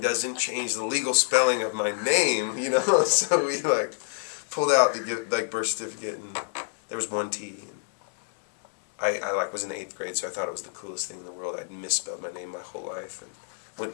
doesn't change the legal spelling of my name, So we like pulled out the birth certificate, and there was one T. And I was in the 8th grade, so I thought it was the coolest thing in the world. I'd misspelled my name my whole life and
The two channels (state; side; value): silent; right; 60 dB below the other